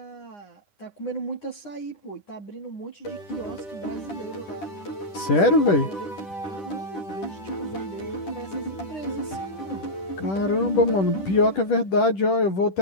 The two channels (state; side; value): late; right; 10 ms